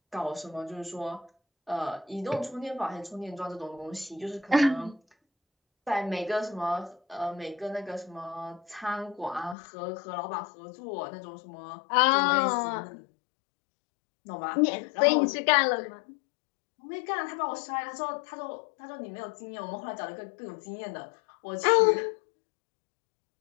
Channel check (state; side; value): drops out; right; at 9.6 s